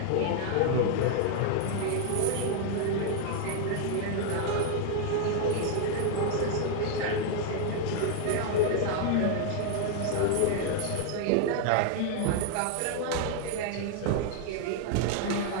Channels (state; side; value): different; both; correlation 0.00